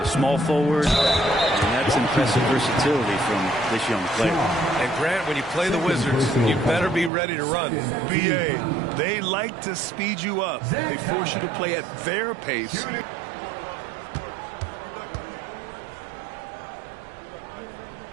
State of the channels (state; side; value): drops out; left; at 7.1 s